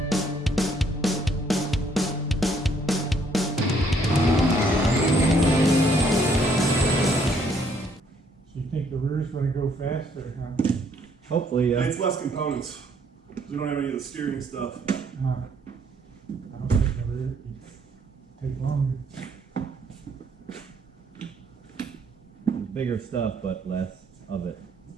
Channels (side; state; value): both; normal; correlation 0.66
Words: So you think the rear's gonna go faster, huh? Hopefully, yeah. It's less components. We don't have any of the steering stuff. I don't think the rear take longer. Bigger stuff, but less of it.